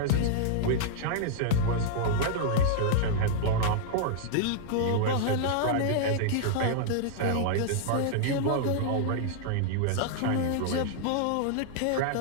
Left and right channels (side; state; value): both; different; correlation -0.01